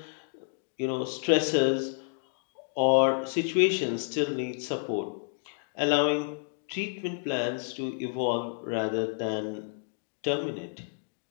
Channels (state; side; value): silent; right; digital silence